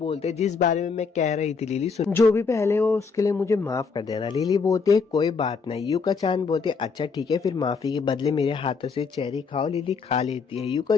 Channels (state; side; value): quieter; right; 5.1 dB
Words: हैं जिस बारे में मैं कह रही थी लिली सुन, जो भी पहले हो उसके लिए मुझे माफ कर देना। लिली बोलती है कोई बात नहीं। यूका चान बोलते है अच्छा ठीक है फिर माफी के बदले मेरे हाथों से चेरी खाओ। लिली खा लेती है। यूका